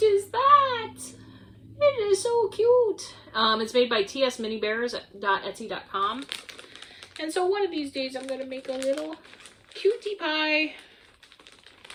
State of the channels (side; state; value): both; identical; correlation 1.00